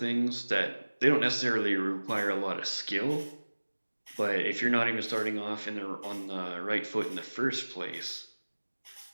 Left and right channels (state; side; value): inverted; both; correlation -1.00